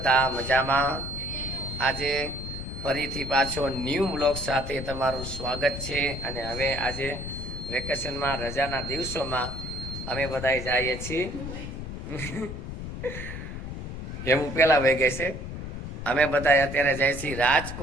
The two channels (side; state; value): left; noise; rumble, 7 dB below the sound